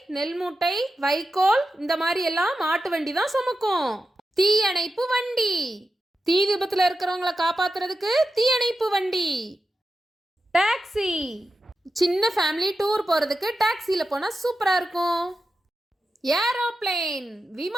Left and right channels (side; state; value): both; normal; correlation 0.91